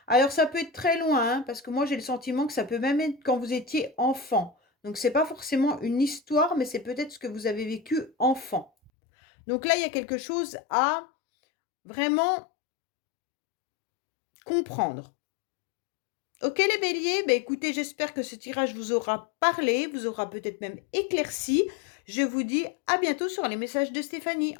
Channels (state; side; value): drops out; right; at 8.9 s